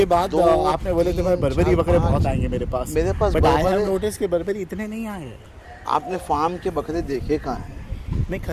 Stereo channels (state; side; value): identical; both; correlation 1.00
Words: एक, बाद दो, आपने बोले थे भाई तीन, बर्बरी चार, बकरे बहुत पाँच। आएंगे मेरे पास। मेरे पास but I have Barbari- notice के बर्बरी इतने नहीं आए हैं। आपने फार्म के बकरे देखे कहाँ हैं? नहीं